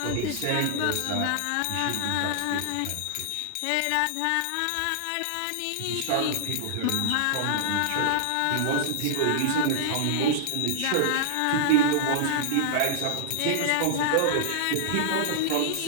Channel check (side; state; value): both; different; correlation -0.01